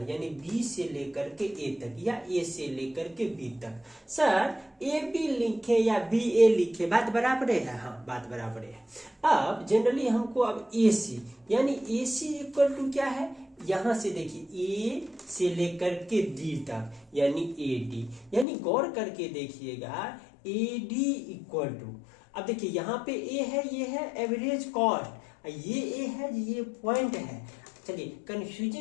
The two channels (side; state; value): right; drops out; at 18.4 s